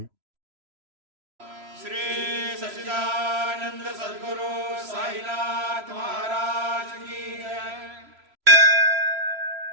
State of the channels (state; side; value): late; left; 3.0 ms